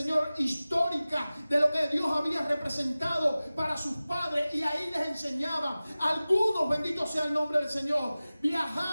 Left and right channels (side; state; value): both; inverted; correlation -0.97